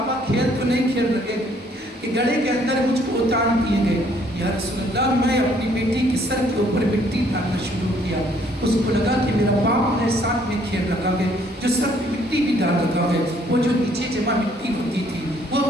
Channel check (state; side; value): normal; both; correlation 0.64